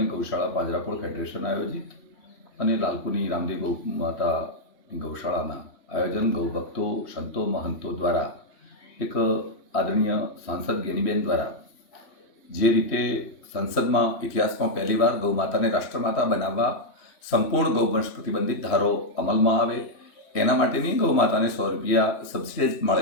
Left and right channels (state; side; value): late; right; 3.1 ms